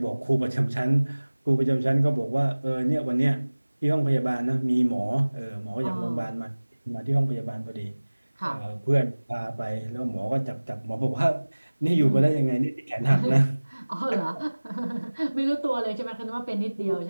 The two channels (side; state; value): both; inverted; correlation -1.00